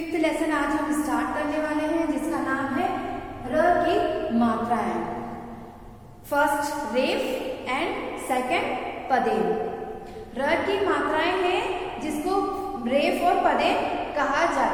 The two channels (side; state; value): both; identical; correlation 1.00